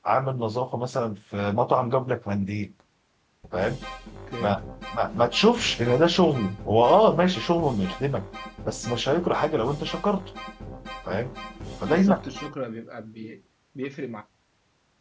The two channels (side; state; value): both; identical; correlation 1.00